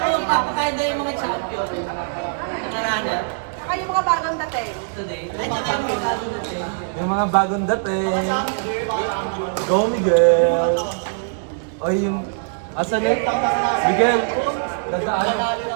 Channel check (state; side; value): silent; left; digital silence